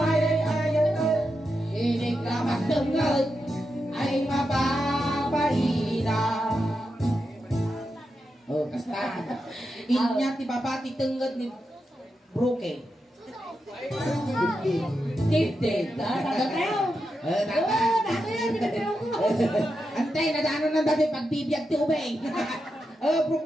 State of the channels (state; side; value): normal; both; correlation 0.87